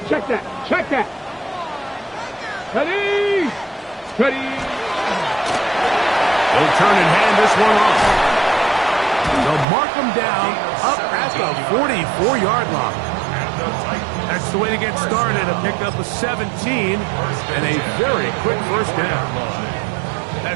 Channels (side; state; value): left; drops out; at 9.7 s